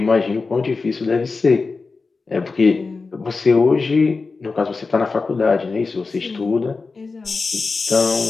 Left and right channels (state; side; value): quieter; right; 4.2 dB